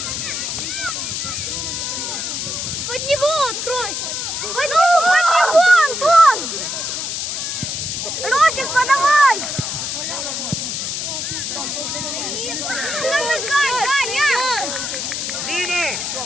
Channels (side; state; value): left; noise; hiss, 3 dB below the sound